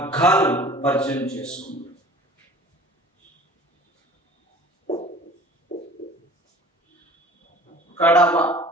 పరిచయం చేసుకుందాం. కడవ,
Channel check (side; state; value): both; normal; correlation 0.45